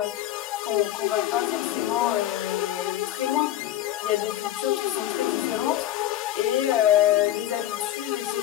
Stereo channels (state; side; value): quieter; right; 13.0 dB